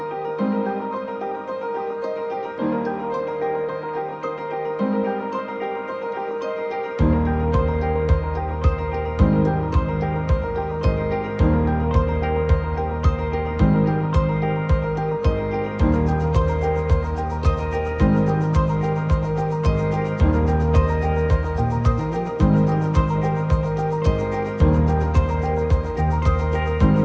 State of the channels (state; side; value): identical; both; correlation 1.00